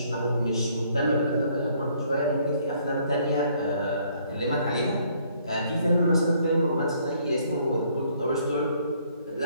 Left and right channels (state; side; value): inverted; both; correlation -0.65